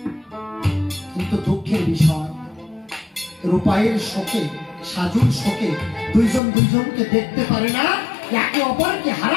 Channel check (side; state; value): right; drops out; at 6.4 s